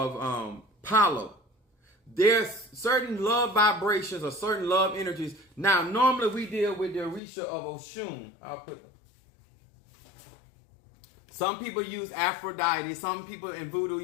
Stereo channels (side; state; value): right; drops out; at 7.2 s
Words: Palo. There's certain love vibrations or certain love energies. Now, normally we deal with the Orisha of Oshun. Some people use Aphrodite. Some people in voodoo